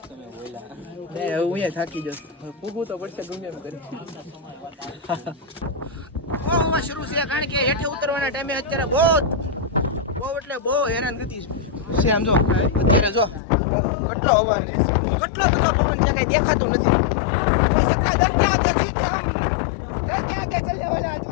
તમે બોલ્યા. ને હું અહીંયા થાકી જઈશ. પૂગું તો પડશે ગમે એમ કરી. બહુ શરૂ છે, કારણ કે હેઠે ઉતરવાના ટાઈમે અત્યારે બહુ એટલે બહુ હેરાન થતી છે. આમ જો અત્યારે જો કેટલો અવાજ, કેટલો બધો પવન છે, કઈ દેખાતું નથી. કોઈ સત્તા દર કે આગે જીતે, દર કે આગે ચલે વાલા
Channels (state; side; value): drops out; right; at 13.4 s